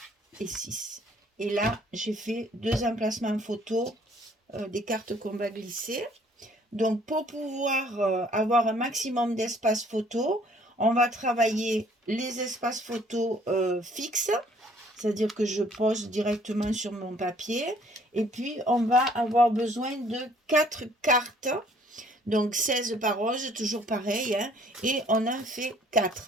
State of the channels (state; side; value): normal; both; correlation 0.60